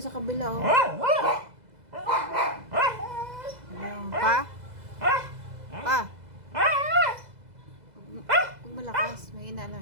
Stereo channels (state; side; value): late; left; 2.0 ms